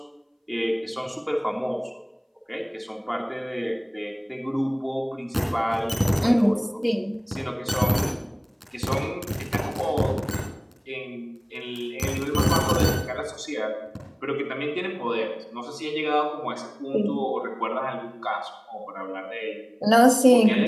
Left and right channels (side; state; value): both; identical; correlation 1.00